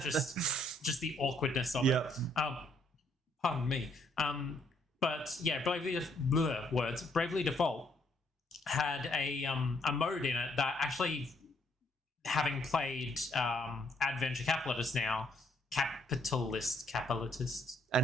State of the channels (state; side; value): normal; both; correlation 0.70